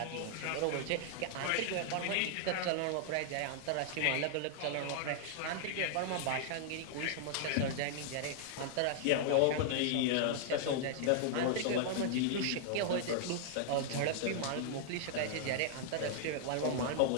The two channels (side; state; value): both; different; correlation -0.01